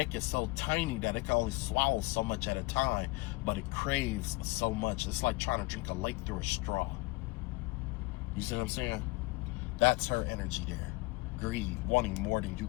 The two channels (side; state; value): right; quieter; 24.0 dB